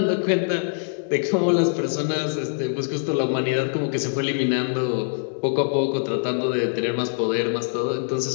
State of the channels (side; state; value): right; silent; digital silence